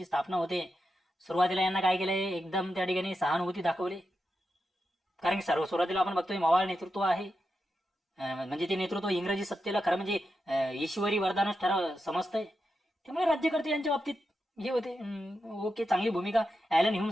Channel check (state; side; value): normal; both; correlation 0.88